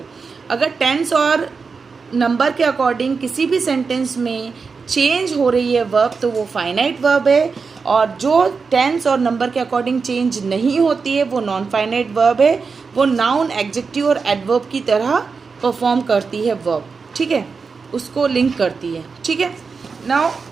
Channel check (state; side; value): quieter; left; 5.0 dB